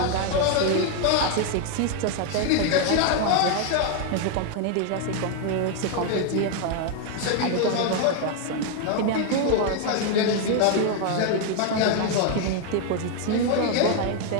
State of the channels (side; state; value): both; different; correlation 0.01